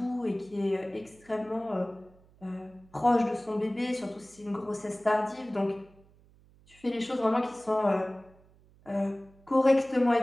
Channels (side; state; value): right; noise; hum, 28 dB below the sound